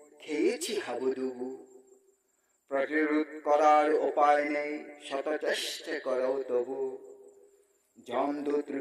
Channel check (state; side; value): identical; both; correlation 1.00